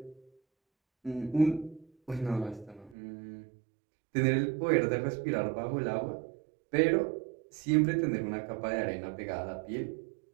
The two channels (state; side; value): drops out; left; at 3.0 s